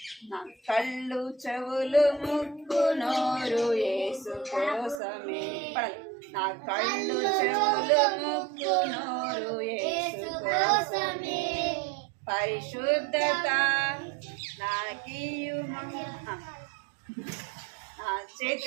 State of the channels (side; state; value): left; drops out; at 5.0 s